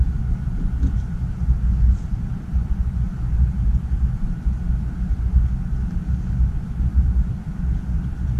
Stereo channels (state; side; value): identical; both; correlation 1.00